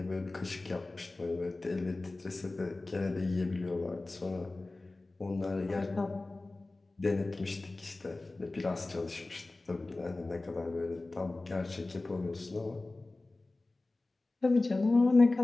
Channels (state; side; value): quieter; right; 3.1 dB